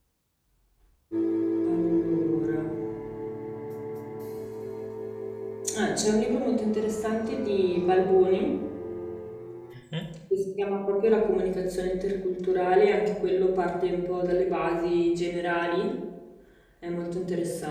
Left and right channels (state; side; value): identical; both; correlation 1.00